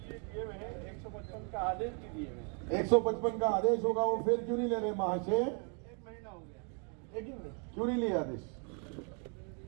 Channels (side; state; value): left; quieter; 39.1 dB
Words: दिए हुए हैं 155 का आदेश भी दिए हुए हैं. 155 का आदेश होगा, वो फिर क्यों नहीं ले रहे महाशय? 1 महीना हो गया. एक ही मिनट, क्यों नहीं लिया आदेश?